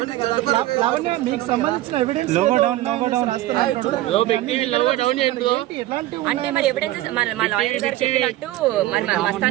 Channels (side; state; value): left; quieter; 15.9 dB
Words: అంటే మరి ఎవిడెన్స్ మా లాయర్ గారు చెప్పినట్టు మరి